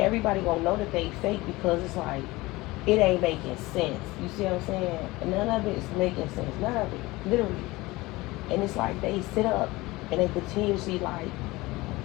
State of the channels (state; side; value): quieter; right; 20.6 dB